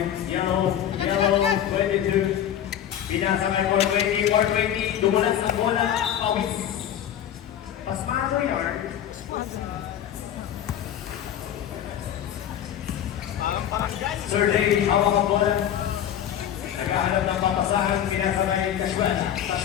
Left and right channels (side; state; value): right; quieter; 10.3 dB